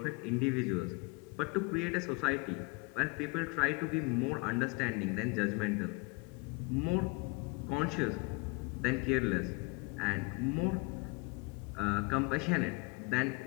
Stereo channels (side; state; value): right; quieter; 28.4 dB